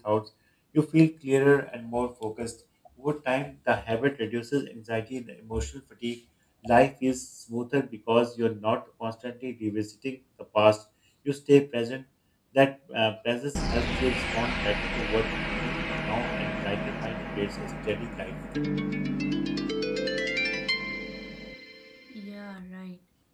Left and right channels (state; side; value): identical; both; correlation 1.00